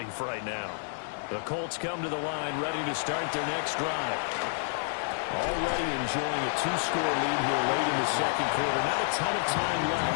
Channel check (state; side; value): silent; right; 58 dB below the other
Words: right now. The Colts come to the line, ready to start their next drive. Already enjoying a two-score lead here late in the second quarter. Not a ton of time